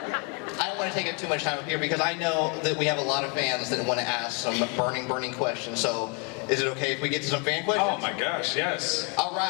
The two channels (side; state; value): right; quieter; 31.8 dB